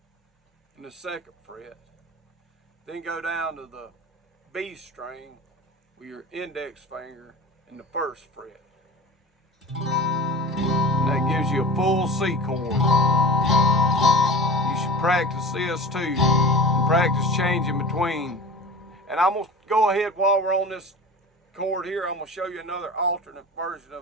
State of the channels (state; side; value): normal; both; correlation 0.34